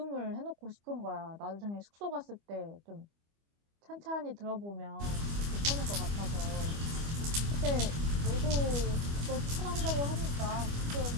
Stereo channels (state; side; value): late; left; 25 ms